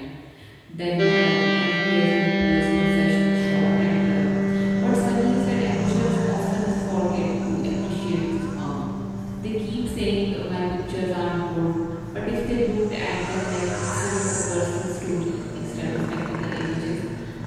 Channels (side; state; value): both; identical; correlation 1.00